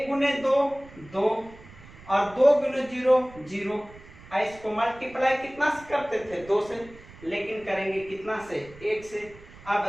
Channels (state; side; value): noise; right; rumble, 20 dB below the sound